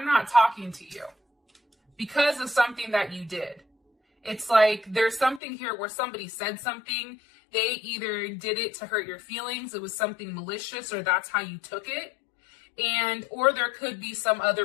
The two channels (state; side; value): drops out; right; at 5.4 s